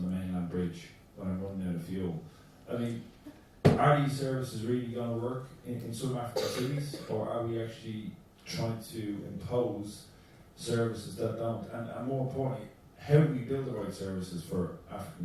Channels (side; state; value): both; identical; correlation 1.00